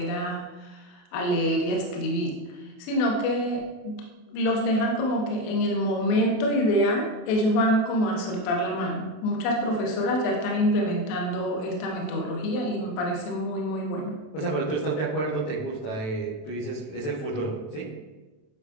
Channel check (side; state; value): right; late; 28 ms